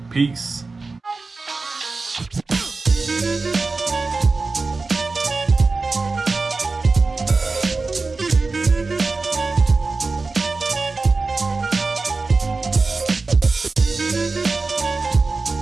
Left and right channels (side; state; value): left; quieter; 3.8 dB